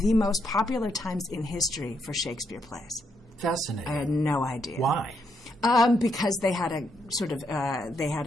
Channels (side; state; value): both; normal; correlation 0.78